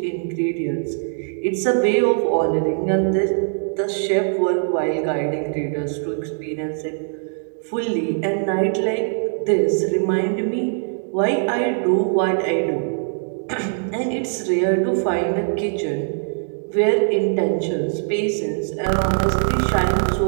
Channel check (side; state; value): left; silent; digital silence